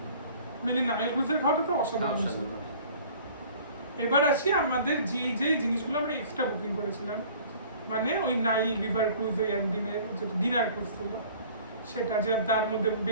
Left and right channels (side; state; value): both; inverted; correlation -0.49